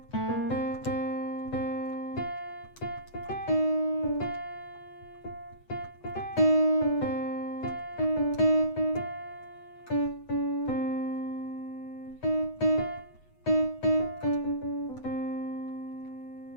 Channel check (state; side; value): late; right; 8.0 ms